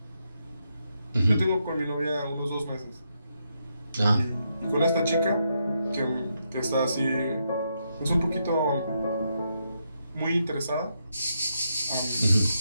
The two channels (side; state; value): both; inverted; correlation -0.81